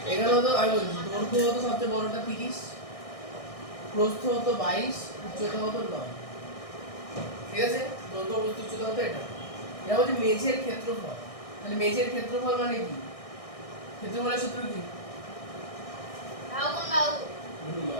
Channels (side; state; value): right; late; 1.6 ms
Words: এখানে হতো আমি বলছি দৈর্ঘ্য হতো সবচেয়ে বড়টা 30, প্রস্থ হতো 22, উচ্চতা হতো 9। ঠিক আছে, দৈর্ঘ্য প্রস্থ উচ্চতা হতো এটা। এটা হচ্ছে মেঝের ক্ষেত্রফল। তাহলে মেঝের ক্ষেত্রফল মানে কি? ক্ষেত্রফলের সূত্র কি?